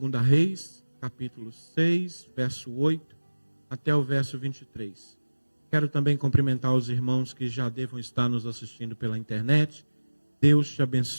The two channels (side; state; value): both; inverted; correlation -1.00